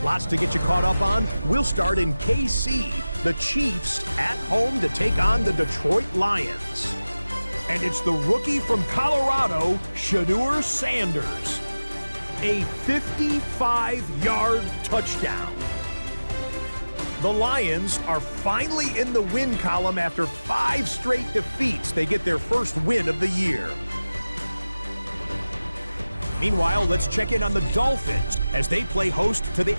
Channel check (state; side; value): inverted; both; correlation -0.97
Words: Lots to get you caught up on. We'll start in KC. The Chiefs at home to take on the Detroit Lions. And it's the rookie from Colorado, Shedeur Sanders. A 55-yard touchdown. The Lions are finally in the win column after 5 straight defeats. They get their first win of the year. Meanwhile, let's check in on the Dolphins as they play host to the